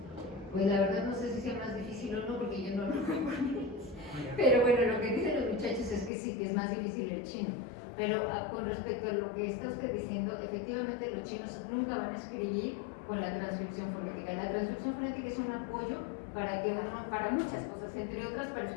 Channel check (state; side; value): drops out; right; at 6.1 s